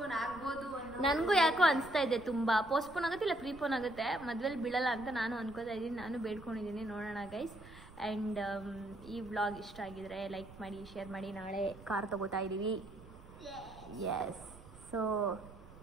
ಆಗ್ಬೋದು. ನನಗೂ ಯಾಕೋ ಅನಿಸ್ತಾ ಇದೆ ತುಂಬ ಪೋಸ್ಟ್ಪೋನ್ ಆಗುತ್ತೆ, ಇಲ್ಲ ಪ್ರೀಪೋನ್ ಆಗುತ್ತೆ, ಮದ್ವೆಲಿ ಬೀಳಲ್ಲ ಅಂತ ನಾನು ಅನ್ಕೋತಾ ಇದ್ದೀನಿ. ನಾನು ಬೇಡ್ಕೊಂಡಿದ್ದೀನಿ, ನೋಡೋಣ ಗೈಸ್. ಆ್ಯಂಡ್ ಈ ವ್ಲಾಗ್ ಇಷ್ಟ ಆಗಿದ್ರೆ ಲೈಕ್ ಮಾಡಿ, ಶೇರ್ ಮಾಡಿ. ನಾಳೆ ಕಾರ್ ತಗೋತಾ ಇದ್ದೀವಿ. ಎಸ್, ಸೊ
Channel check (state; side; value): noise; right; rumble, 19 dB below the sound